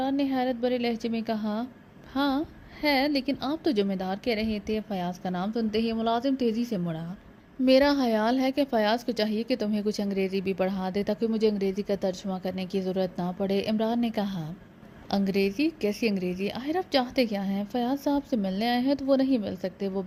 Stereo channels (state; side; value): identical; both; correlation 1.00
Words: نے حیرت بھرے لہجے میں کہا۔ ہاں ہے، لیکن آپ تو ذمہ دار کہہ رہے تھے۔ فیاض کا نام سنتے ہی ملازم تیزی سے مڑا۔ میرا خیال ہے کہ فیاض کو چاہیے کہ تمہیں کچھ انگریزی بھی پڑھا دے تاکہ مجھے انگریزی کا ترجمہ کرنے کی ضرورت نہ پڑے، عمران نے کہا۔ انگریزی؟ کیسی انگریزی؟ آخر آپ چاہتے کیا ہیں؟ فیاض صاحب سے ملنے آئے ہیں تو وہ نہیں مل سکتے، وہ